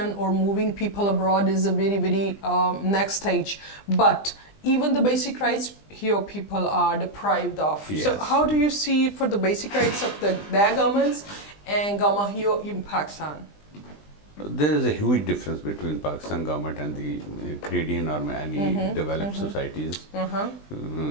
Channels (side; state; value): right; late; 20 ms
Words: or moving people abroad is a very, very next stage, but even the basic rights here people are deprived of. So how do you see for the basic rights of their governments and government here in Pakistan? There is a huge difference between Pakistan government and the Canadian or any developed societies